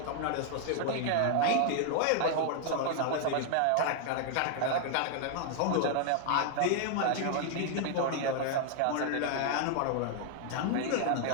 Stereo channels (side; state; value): both; different; correlation 0.00